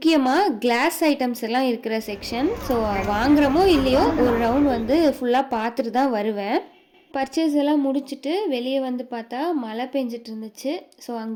கிளாஸ் ஐட்டம்ஸ் எல்லாம் இருக்கிற செக்ஷன். ஸோ வாங்குகிறோமோ இல்லையோ ஒரு ரவுண்ட் வந்து ஃபுல்லாக பார்த்துட்டு தான் வருவேன். பர்ச்சேஸ் எல்லாம் முடிச்சுட்டு வெளியே வந்து பார்த்தா மழை பெஞ்சிட்டு இருந்துச்சு. ஸோ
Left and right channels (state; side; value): identical; both; correlation 1.00